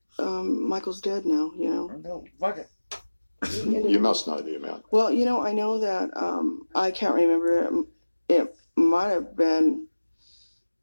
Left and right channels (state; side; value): inverted; both; correlation -1.00